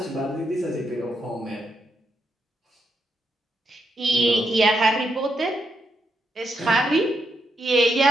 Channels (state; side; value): normal; both; correlation 0.81